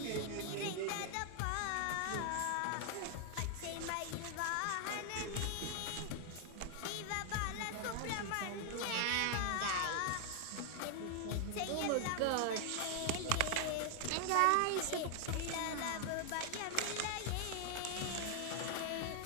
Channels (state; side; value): different; both; correlation 0.00